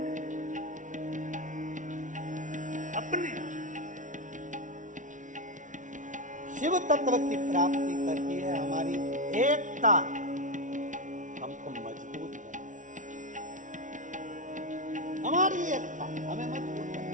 अपने शिव तत्व की प्राप्ति करती है हमारी एकता, हमको मजबूत है, हमारी एकता हमें मजबूत है।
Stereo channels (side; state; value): left; late; 0.37 ms